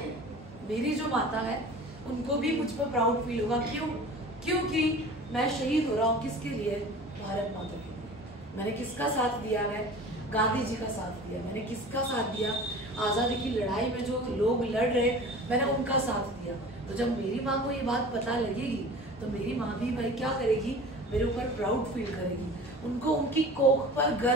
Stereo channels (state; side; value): normal; both; correlation 0.40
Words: मेरी जो माता है उनको भी मुझ पर प्राउड फील होगा। क्यों? क्योंकि मैं शहीद हो रहा हूँ किसके लिए, भारत माता के लिए। मैंने किसका साथ दिया है, गांधी जी का साथ दिया। मैंने किसका साथ दिया, आजादी की लड़ाई में जो लोग लड़ रहे मैंने उनका साथ दिया। तो जब मेरी माँ को ये बात पता लगेगी तो मेरी माँ भी भाई क्या करेगी, मेरे ऊपर प्राउड फील करेगी, उनको उनकी कोख पर